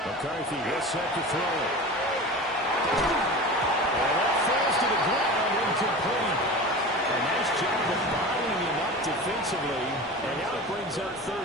McCarthy is set to throw it. And that falls to the ground, incomplete. A nice job of bottling him up defensively, and now it brings up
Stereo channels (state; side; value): normal; both; correlation 0.32